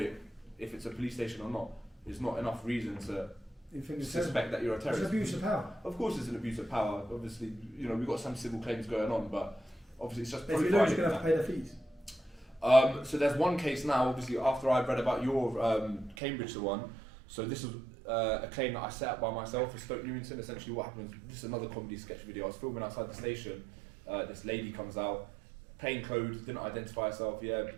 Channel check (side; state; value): left; drops out; at 16.2 s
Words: if it's a police station or not, is not enough reason to suspect that you're a terrorist. It's abuse of power. Of course, it's an abuse of power. Obviously, we've got some civil claims going on, but obviously it's just if you lose, you're going to have to pay the fees. So there's one case now, obviously, after I read about your Cambridge one. So this was a claim that I set up by myself for Stoke Newington. Essentially what happened was, this is another comedy sketch video. I was filming outside the station. This lady comes out, plain clothes, didn't identify herself,